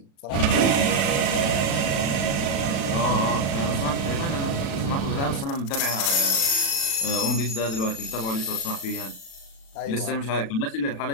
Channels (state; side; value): late; right; 36 ms